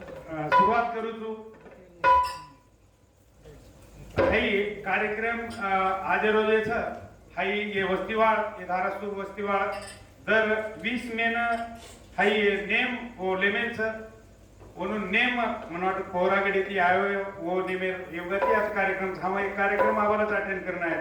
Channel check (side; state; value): both; identical; correlation 1.00